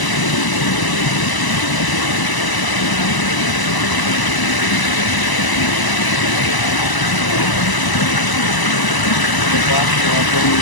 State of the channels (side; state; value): right; late; 1.0 ms